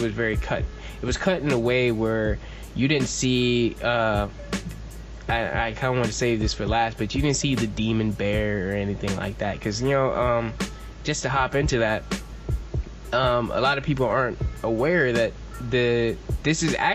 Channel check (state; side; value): identical; both; correlation 1.00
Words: was very cut. It was cut in a way where you didn't see. I kind of want to save this for last, but you didn't see the demon bear or anything like that, because just to hop into that, a lot of people aren't aware that this is